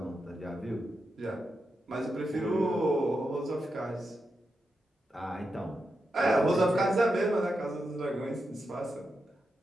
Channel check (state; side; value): normal; both; correlation 0.87